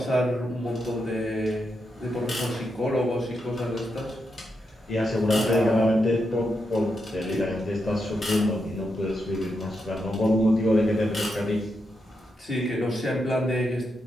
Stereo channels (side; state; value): both; normal; correlation 0.84